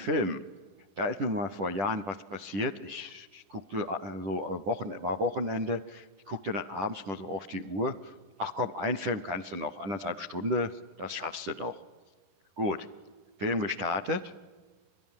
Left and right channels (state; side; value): late; left; 10 ms